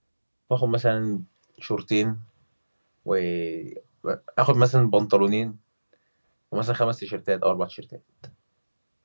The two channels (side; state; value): both; inverted; correlation -1.00